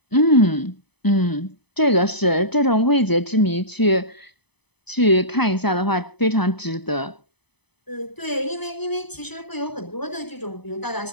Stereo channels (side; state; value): right; late; 0.98 ms